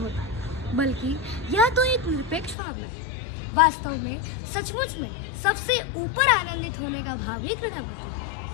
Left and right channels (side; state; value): right; drops out; at 2.6 s